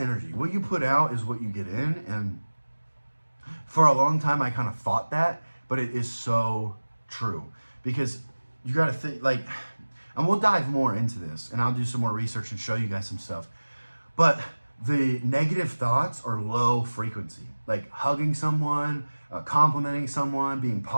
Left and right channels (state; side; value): inverted; both; correlation -1.00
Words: What you put out is what you get in. And for a long time, I kind of thought that, but it is so true. Because you got to think, like, and we'll dive more into this, and I'll do some more research and show you guys some stuff. But the negative thoughts are low frequency, like hugging someone, complimenting someone, being